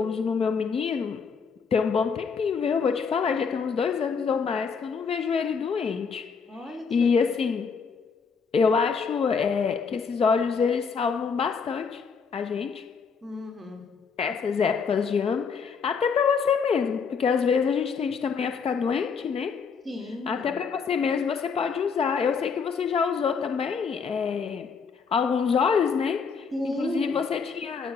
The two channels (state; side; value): quieter; right; 5.7 dB